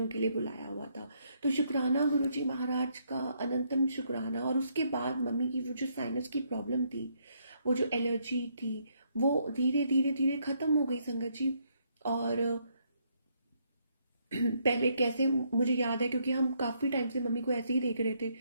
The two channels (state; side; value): inverted; both; correlation -0.73